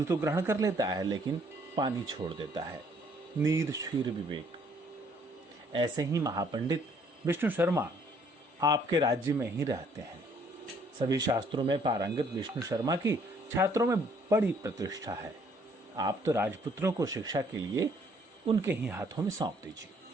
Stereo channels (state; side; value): normal; both; correlation 0.63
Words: तो ग्रहण कर लेता है, लेकिन पानी छोड़ देता है। नीर क्षीर विवेक। ऐसे ही महापंडित विष्णु शर्मा आपके राज्य में ही रहते हैं। सभी शास्त्रों में पारंगत विष्णु शर्मा की छात्रों में बड़ी प्रतिष्ठा है। आप तो राजपुत्रों को शिक्षा के लिए उनके ही हाथों में सौंप दीजिए।